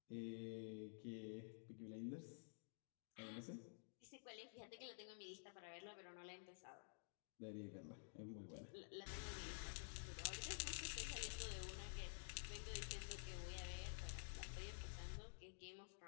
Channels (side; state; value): right; silent; digital silence